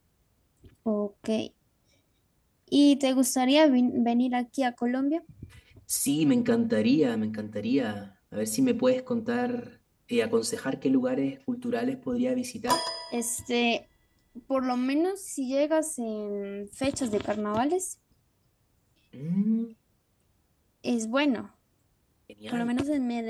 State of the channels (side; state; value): both; identical; correlation 1.00